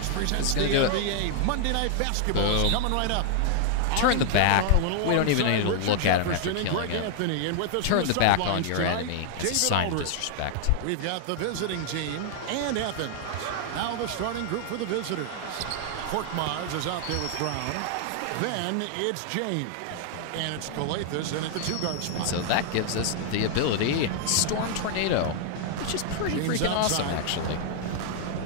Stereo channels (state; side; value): different; both; correlation 0.00